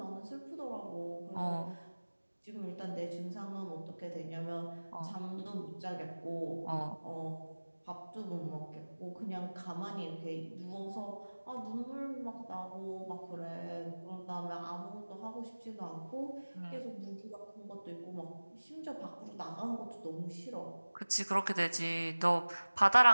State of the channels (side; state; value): both; inverted; correlation -1.00